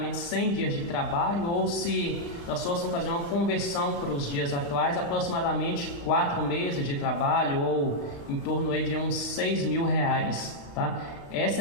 100 dias de trabalho, ou se nós fôssemos fazer uma conversão para os dias atuais, aproximadamente 4 meses de trabalho, ou em torno aí de uns 6 mil reais, tá?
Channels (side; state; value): right; late; 35 ms